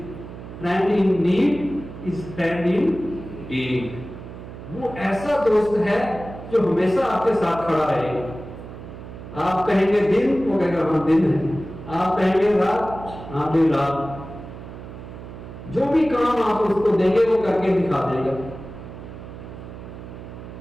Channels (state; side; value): noise; right; hum, 13 dB below the sound